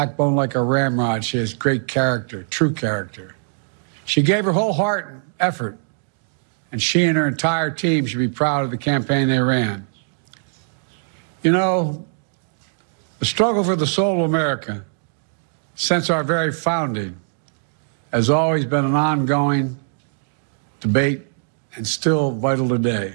like a ramrod. She has great character, true character. She gave her whole heart and effort, and she and her entire team should be proud of the campaign they ran. You know, the struggle for the soul of America, since our very founding, has always been an ongoing debate and still vital today.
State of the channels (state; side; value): silent; left; digital silence